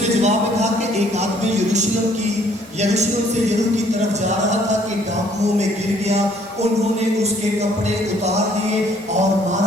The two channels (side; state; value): both; normal; correlation 0.61